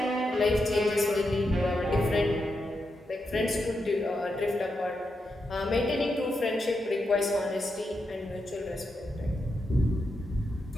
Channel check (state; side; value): normal; both; correlation 0.85